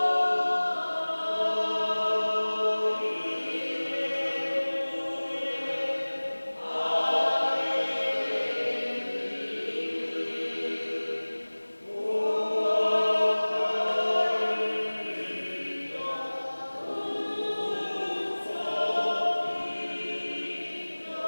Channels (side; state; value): both; inverted; correlation -1.00